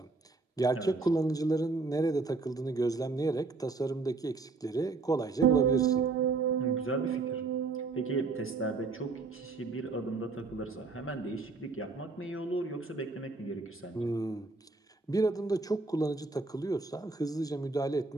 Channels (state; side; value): quieter; left; 4.0 dB